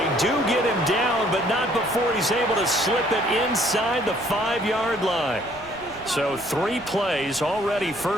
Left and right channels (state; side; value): noise; right; rumble, 22 dB below the sound